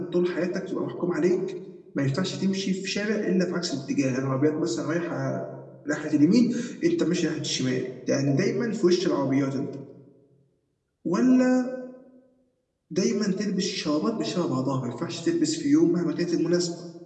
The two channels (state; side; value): identical; both; correlation 1.00